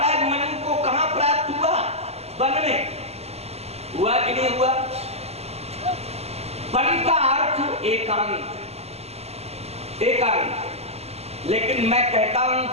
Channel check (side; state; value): left; late; 0.30 ms